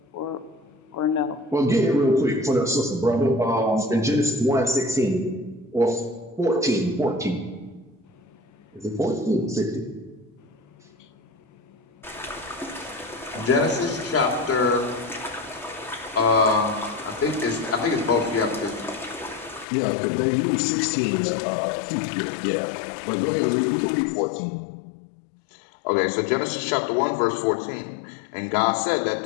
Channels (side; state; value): right; drops out; at 19.7 s